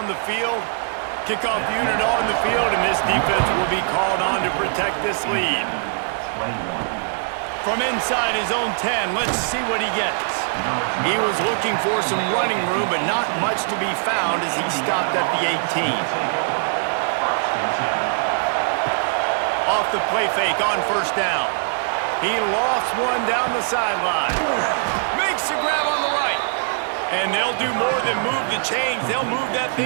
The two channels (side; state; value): left; silent; digital silence